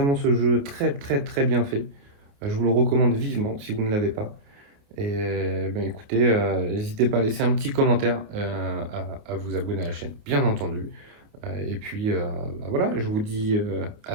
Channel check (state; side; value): late; left; 28 ms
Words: ce jeu très très très bien fait. Je vous le recommande vivement si vous ne l'avez pas. Et ben, écoutez, n'hésitez pas à laisser un petit commentaire, à vous abonner à la chaîne, bien entendu. Et puis bah voilà, je vous dis à